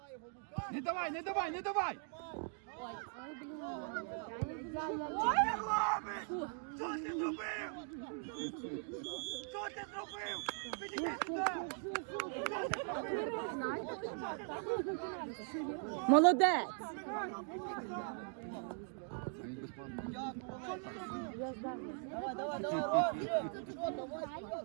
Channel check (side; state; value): left; silent; 51 dB below the other